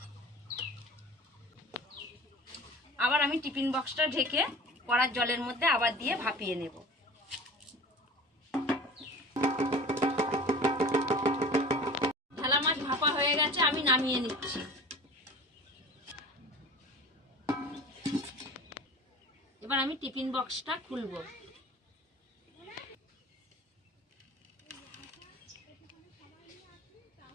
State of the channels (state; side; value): normal; both; correlation 0.40